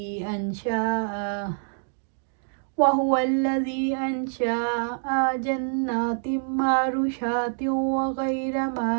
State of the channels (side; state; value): left; silent; digital silence